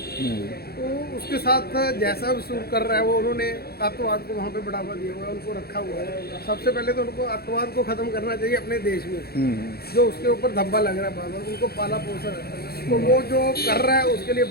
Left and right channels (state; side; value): late; right; 0.46 ms